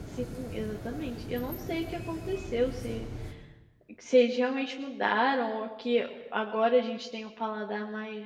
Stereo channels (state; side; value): identical; both; correlation 1.00